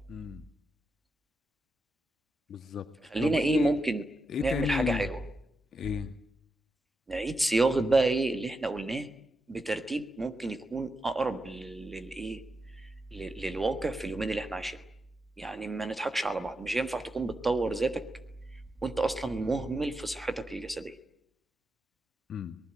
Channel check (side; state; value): both; normal; correlation 0.86